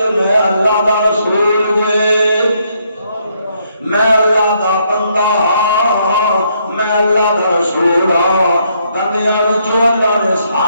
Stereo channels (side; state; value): both; inverted; correlation -0.73